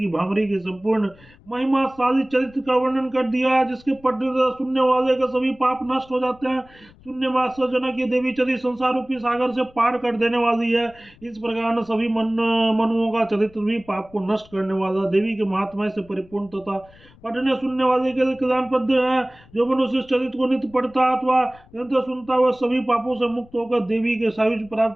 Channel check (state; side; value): noise; left; rumble, 26 dB below the sound